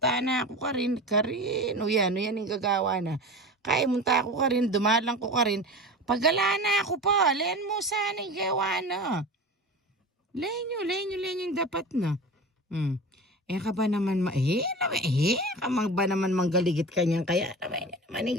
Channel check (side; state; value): both; normal; correlation 0.32